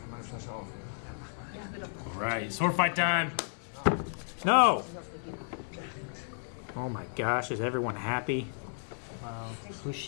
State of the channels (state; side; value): silent; right; digital silence